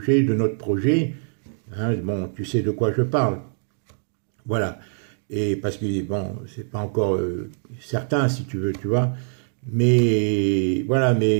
de notre projet. Hein, bon, tu sais de quoi je parle. Voilà. Et parce que, bon, c'est pas encore certain, si tu veux, tu vois. Mais voilà,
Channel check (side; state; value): left; silent; 63 dB below the other